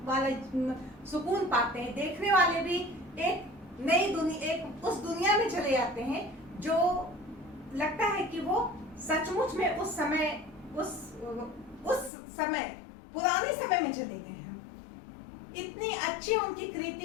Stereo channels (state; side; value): drops out; right; at 12.1 s